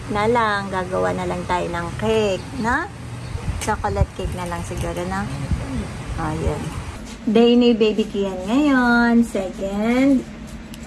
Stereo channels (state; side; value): identical; both; correlation 1.00